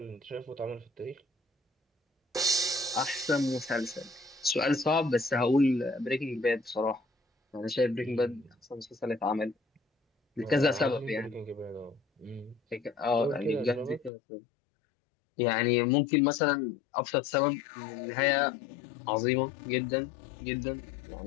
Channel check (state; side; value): drops out; right; at 14.1 s